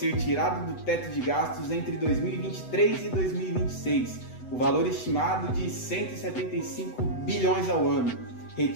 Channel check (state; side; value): late; right; 8.0 ms